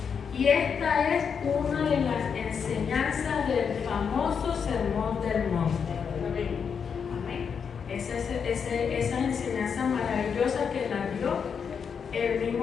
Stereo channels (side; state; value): right; quieter; 6.6 dB